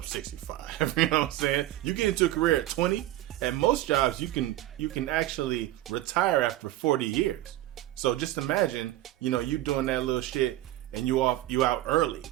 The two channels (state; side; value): quieter; left; 15.2 dB